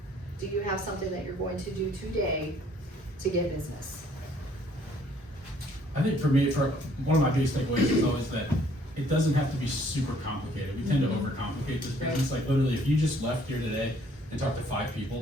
Do you have something that you're going to do today to get business? I think for me, for one of my biggest takeaways is always that it doesn't have to be super complicated. We tend to overcomplicate this business. Like literally, if you just left here today and talked to 5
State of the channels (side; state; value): both; normal; correlation 0.61